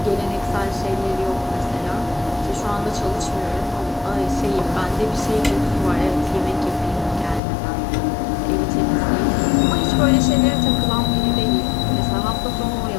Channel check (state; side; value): drops out; right; at 7.4 s